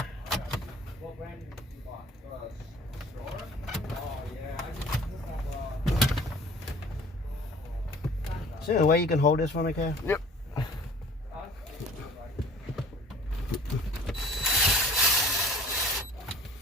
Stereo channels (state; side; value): normal; both; correlation 0.49